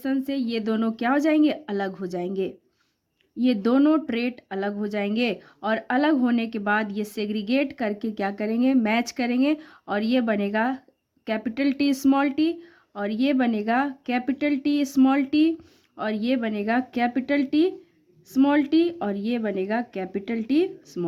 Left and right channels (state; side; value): identical; both; correlation 1.00